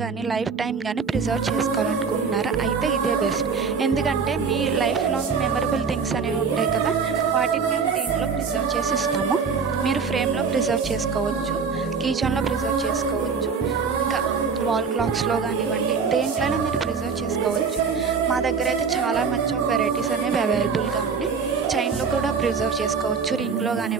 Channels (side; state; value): left; quieter; 5.6 dB